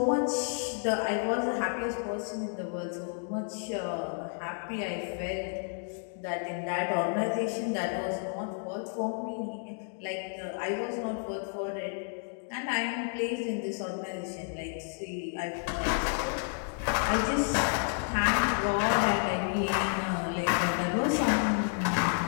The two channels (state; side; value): silent; right; 57 dB below the other